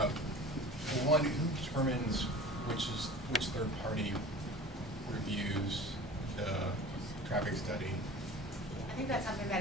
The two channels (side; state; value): both; normal; correlation 0.39